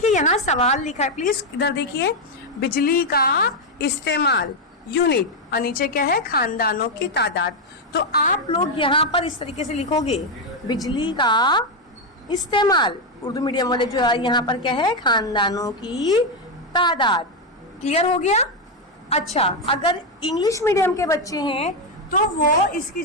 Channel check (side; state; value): both; normal; correlation 0.04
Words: यहाँ सवाल लिखा है, प्लीज इधर देखिए, बिजली का इस्तेमाल यूनिट, और नीचे क्या है? खानदानों की तादाद। तो आप लोग यहाँ पर इस तरीके से लिखोगे, बिजली का इस्तेमाल, उर्दू मीडियम वाले जो है यहाँ पर क्या है? खानदानों की तादाद। क्लियर हो गया? अच्छा, अगर इंग्लिश मीडियम के बच्चे हैं तो वो इसकी